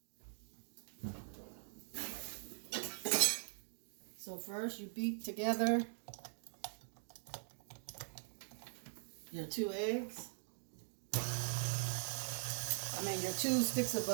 So first you beat together your 2 eggs. Your 2 sticks of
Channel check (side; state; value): left; silent; digital silence